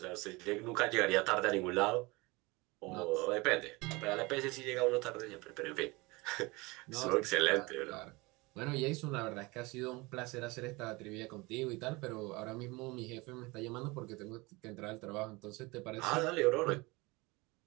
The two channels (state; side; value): quieter; left; 24.1 dB